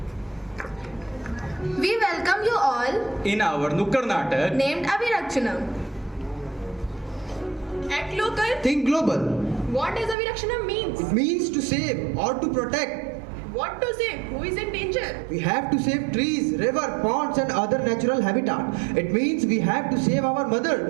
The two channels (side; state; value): left; drops out; at 10.2 s